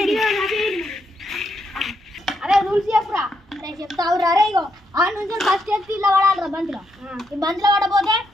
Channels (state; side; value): normal; both; correlation 0.78